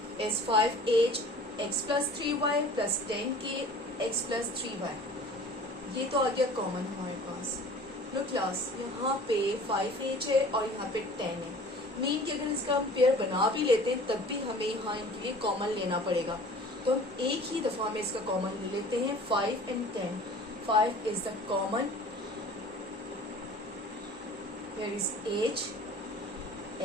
is 5h x plus 3y plus 10k x plus 3y. ये तो आ गया common हमारे पास. लो class, यहाँ पे 5h है और यहाँ पे 10 है. मीन कि अगर इसका हम पेयर बना भी लेते हैं तब भी हमें यहाँ इनके लिए कॉमन लेना पड़ेगा. तो हम एक ही दफ़ा में इसका कॉमन ले लेते हैं 5 and 10. 5 is the common. Here is h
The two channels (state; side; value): normal; both; correlation 0.45